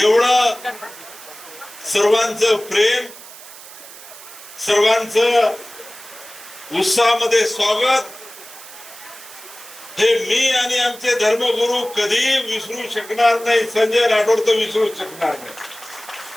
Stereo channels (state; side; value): noise; right; hiss, 17 dB below the sound